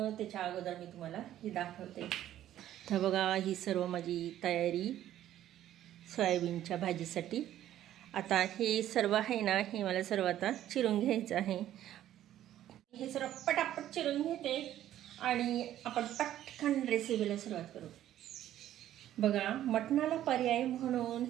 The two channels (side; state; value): left; quieter; 12.3 dB